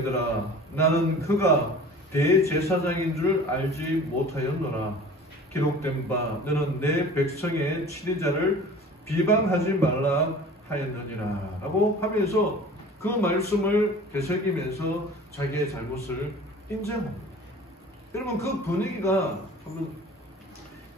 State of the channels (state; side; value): normal; both; correlation 0.43